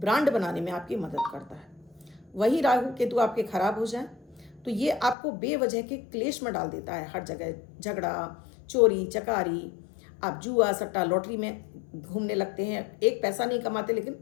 बनाने में आपकी मदद करता है। वही राहु केतु आपके खराब हो जाए तो ये आपको बेवजह के क्लेश में डाल देता है। हर जगह झगड़ा, चोरी चकारी, आप जुआ सट्टा लॉटरी में घूमने लगते हैं, एक पैसा नहीं कमाते लेकिन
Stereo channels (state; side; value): drops out; right; at 5.2 s